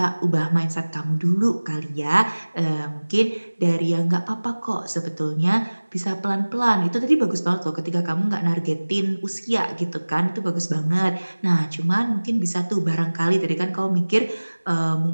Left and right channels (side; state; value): both; inverted; correlation -1.00